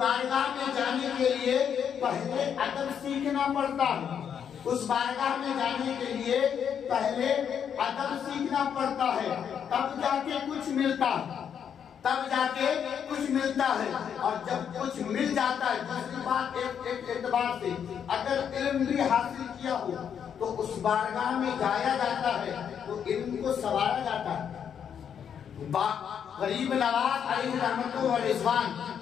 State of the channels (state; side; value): quieter; right; 8.1 dB